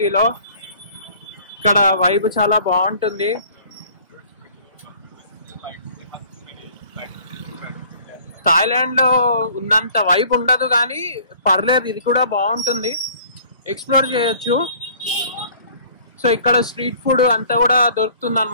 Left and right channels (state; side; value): inverted; both; correlation -0.52